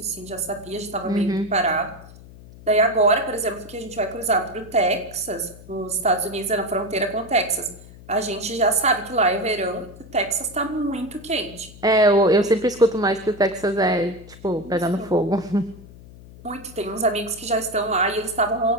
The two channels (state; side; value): noise; left; hum, 19 dB below the sound